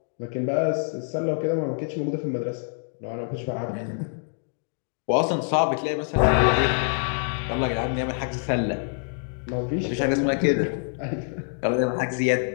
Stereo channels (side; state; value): right; silent; digital silence